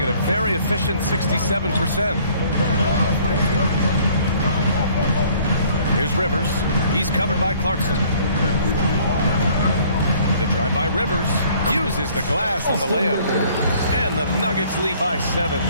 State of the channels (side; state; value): both; inverted; correlation -0.57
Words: at a very efficient 67%. Here's Rivers. He's covered by Clarkson. The drive by Rivers uses the glass on the layup. And the Nuggets lead by 7.